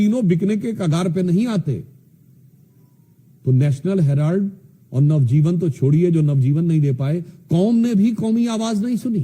बिकने के कगार पे नहीं आते। तो नेशनल हेराल्ड और नवजीवन तो छोड़िए, जो नवजीवन नहीं दे पाए, कौम ने भी कौमी आवाज नहीं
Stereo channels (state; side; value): identical; both; correlation 1.00